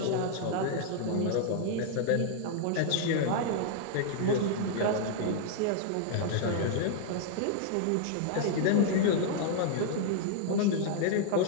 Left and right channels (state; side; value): different; both; correlation -0.01